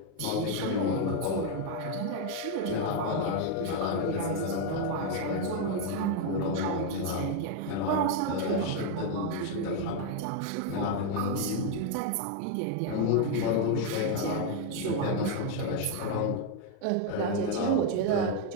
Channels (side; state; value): both; different; correlation 0.01